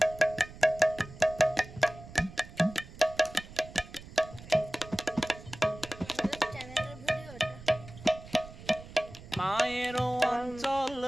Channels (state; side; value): noise; right; rumble, 17 dB below the sound